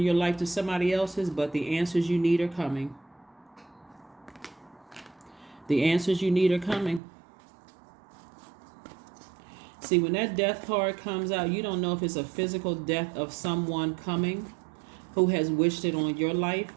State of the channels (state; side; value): drops out; left; at 7.0 s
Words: your life to somebody else's, but the answers you need are coming. The answers you need are coming. See, when that death card comes out, you don't know if it's a physical death of someone coming who has wished it on your life,